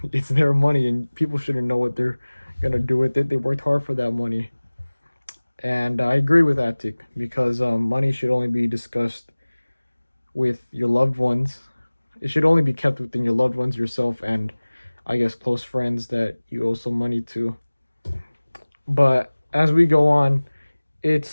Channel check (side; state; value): both; inverted; correlation -1.00